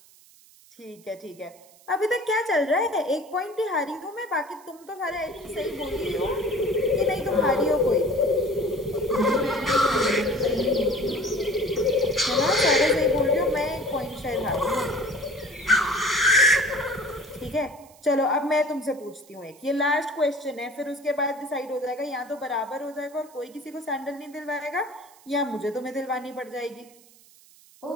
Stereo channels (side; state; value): right; noise; hiss, 26 dB below the sound